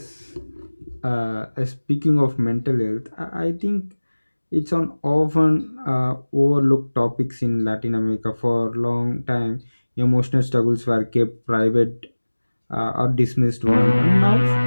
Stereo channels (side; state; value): both; inverted; correlation -1.00